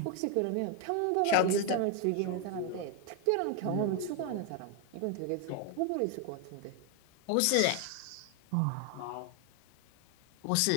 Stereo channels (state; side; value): different; both; correlation 0.01